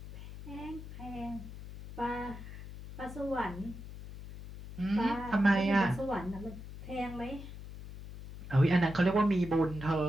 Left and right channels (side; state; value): left; noise; hum, 12 dB below the sound